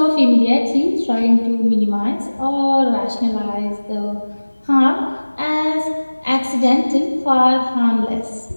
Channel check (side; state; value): both; inverted; correlation -1.00